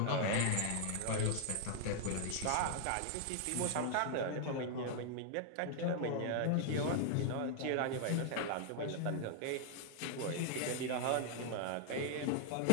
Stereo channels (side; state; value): both; different; correlation 0.00